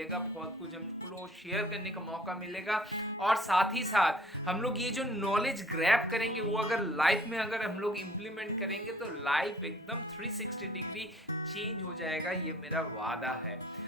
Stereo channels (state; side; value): normal; both; correlation 0.55